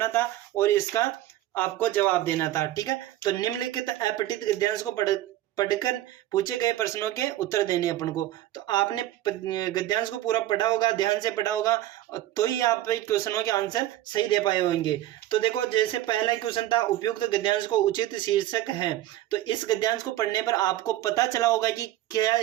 था और इसका आपको जवाब देना था, ठीक है। तो निम्नलिखित अपठित गद्यांश को पढ़कर पूछे गए प्रश्नों के उत्तर देने अपन को। तो आपने गद्यांश को पूरा पढ़ा होगा, ध्यान से पढ़ा होगा, तो ही आप क्वेश्चनों के आंसर सही दे पाए होंगे। तो देखो, जैसे पहला क्वेश्चन था उपयुक्त गद्यांश को उचित शीर्षक है। तो इस गद्यांश को पढ़ने पर आपको पता चला होगा कि क्या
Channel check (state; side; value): quieter; left; 14.2 dB